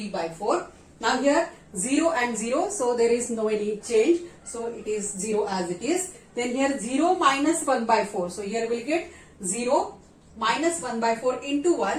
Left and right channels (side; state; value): both; identical; correlation 1.00